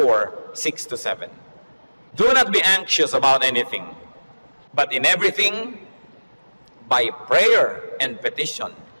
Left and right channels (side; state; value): both; inverted; correlation -1.00